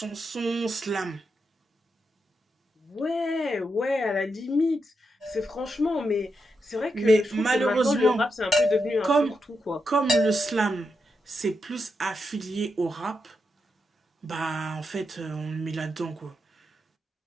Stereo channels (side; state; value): both; normal; correlation 0.85